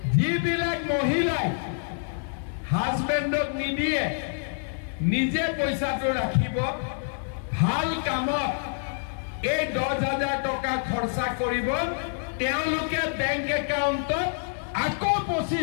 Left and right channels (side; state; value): right; silent; digital silence